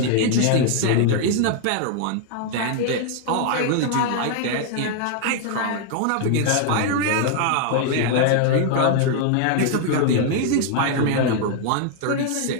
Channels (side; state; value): both; different; correlation 0.00